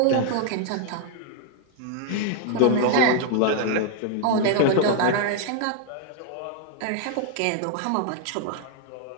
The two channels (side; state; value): both; different; correlation 0.00